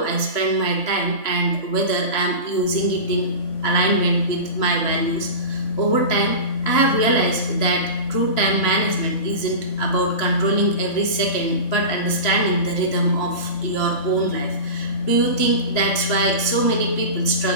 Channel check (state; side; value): late; right; 3.6 ms